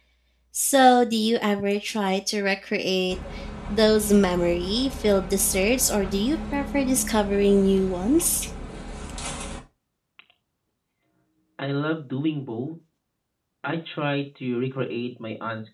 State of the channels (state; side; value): identical; both; correlation 1.00